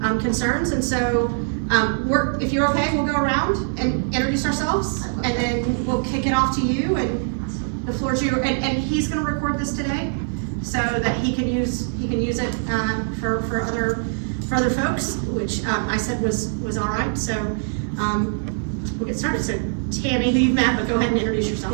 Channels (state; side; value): silent; left; digital silence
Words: concerns. And so if you're okay, we'll go around and introduce ourselves, and then we'll kick it off to you, and the floor is yours. And he's going to record this today so that he can use it for other folks, which I said was all right. So we'll get started. So Tammy, who you've met, but go ahead and introduce yourself.